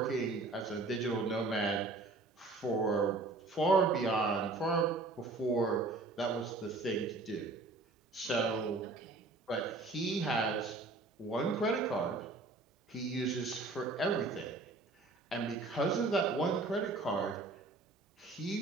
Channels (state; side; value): quieter; left; 3.4 dB